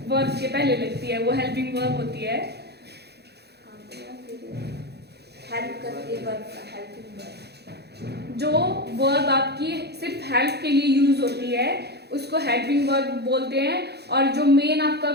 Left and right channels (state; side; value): late; left; 0.48 ms